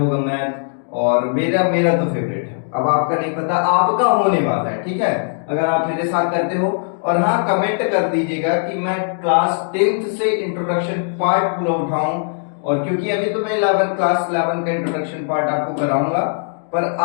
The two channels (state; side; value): silent; right; 66 dB below the other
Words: मैथ, और मेरा मेरा तो फेवरेट है। अब आपका नहीं पता, आपका होने वाला है, ठीक है, अगर आप मेरे साथ करते हो। और हाँ, कमेंट कर दीजिएगा कि मैं क्लास 10th से इंट्रोडक्शन पार्ट पूरा उठाऊं। और क्योंकि अभी तो मैं क्लास 11 का इंट्रोडक्शन पार्ट आपको कराऊंगा, पर